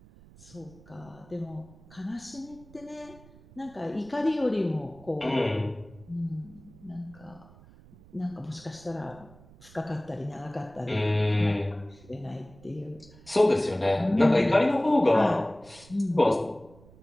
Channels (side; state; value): right; noise; rumble, 23 dB below the sound